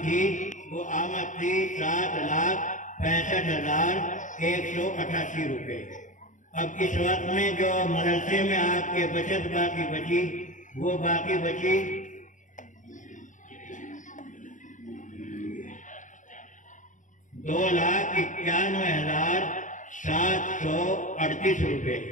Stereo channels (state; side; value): late; right; 0.37 ms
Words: تھی وہ آمد تھی 7,65,188 روپے. اب اس وقت میں جو مدرسے میں آپ کے بچت باقی بچی وہ باقی بچی 2,91,738 روپے.